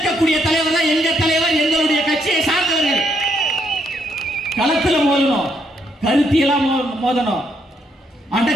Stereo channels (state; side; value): normal; both; correlation 0.74